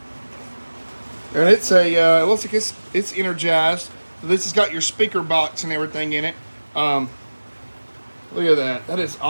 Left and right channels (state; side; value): inverted; both; correlation -1.00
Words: And it's a, it looks like it's energized. So this has got your speaker box and everything in it. Look at that. That is